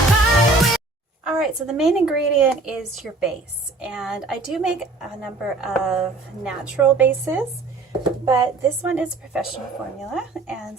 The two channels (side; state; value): left; quieter; 3.4 dB